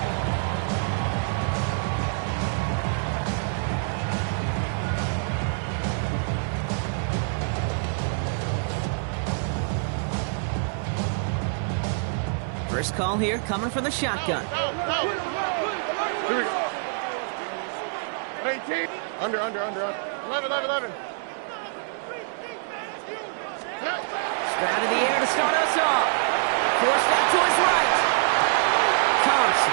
First call here coming from the shotgun. Here we go. 18. Under. 11. Stroud in the air to start us off. Force that to his right. Counts.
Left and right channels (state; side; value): silent; left; digital silence